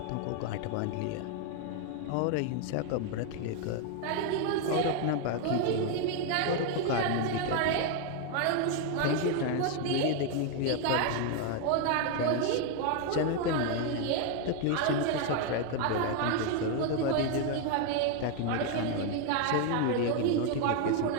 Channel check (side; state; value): both; different; correlation 0.01